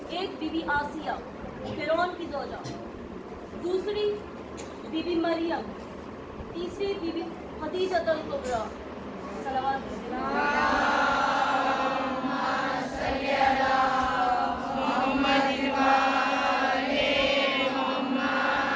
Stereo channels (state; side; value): identical; both; correlation 1.00